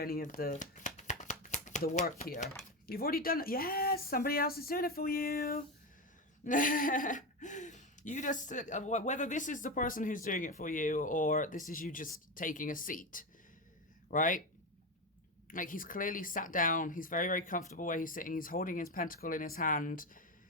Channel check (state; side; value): normal; both; correlation 0.16